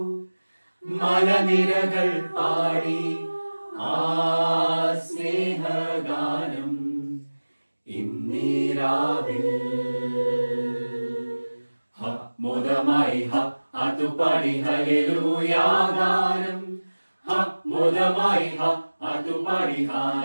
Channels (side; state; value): both; inverted; correlation -1.00